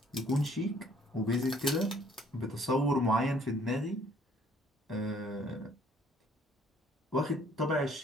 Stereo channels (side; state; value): both; normal; correlation 0.60